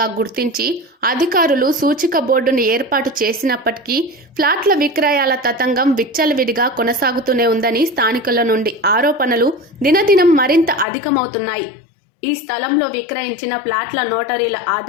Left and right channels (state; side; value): drops out; right; at 10.9 s